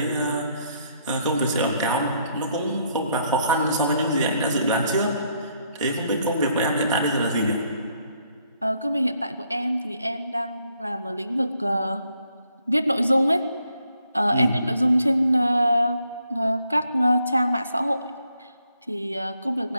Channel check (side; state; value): both; inverted; correlation -0.72